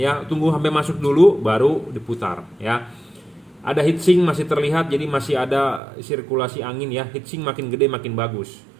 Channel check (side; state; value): left; drops out; at 5.8 s